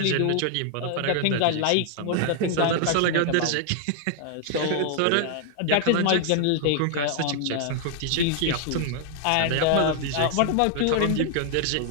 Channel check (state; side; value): different; both; correlation 0.00